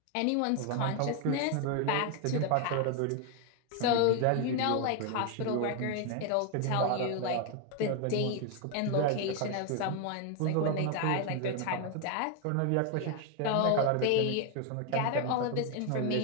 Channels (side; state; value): both; different; correlation 0.01